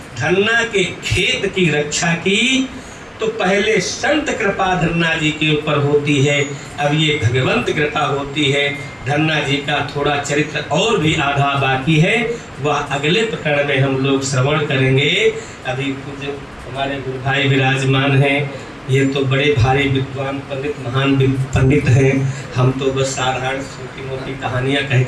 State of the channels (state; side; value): identical; both; correlation 1.00